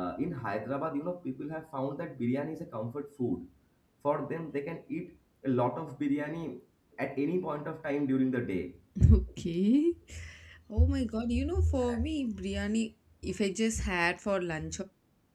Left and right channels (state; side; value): identical; both; correlation 1.00